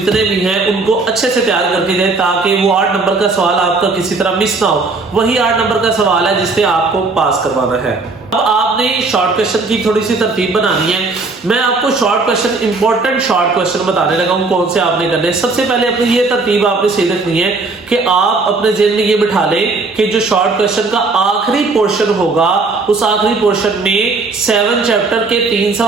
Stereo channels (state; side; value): quieter; left; 3.7 dB